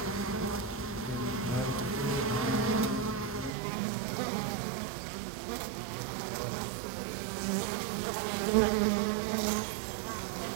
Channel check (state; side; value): drops out; left; at 3.5 s